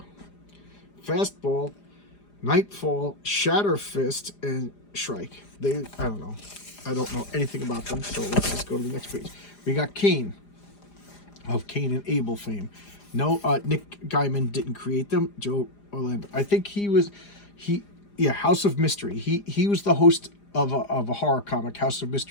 Fastball, Nightfall, Shatterfist, and Shrike. I don't know. I don't know anything about them, so let's just go to the next page. We got Kane, of Kane and Abel fame. No, Nick Gaiman didn't create them. Joe Orlando. I think House of Mystery. He was the host of a horror comic, House of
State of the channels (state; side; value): late; right; 4.9 ms